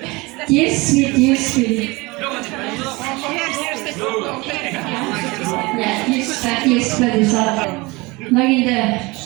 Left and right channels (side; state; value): left; quieter; 23.9 dB